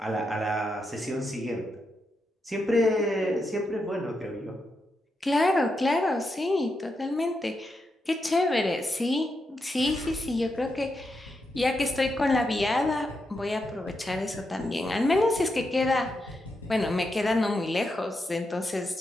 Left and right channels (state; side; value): normal; both; correlation 0.85